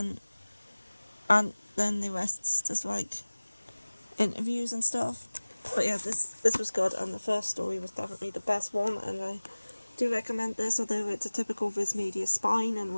then the rest's just like interviews and stuff. But yeah, this was good, and the first story was definitely the best one, and I do recommend this, although it's a typical Viz Media spine in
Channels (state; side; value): inverted; both; correlation -1.00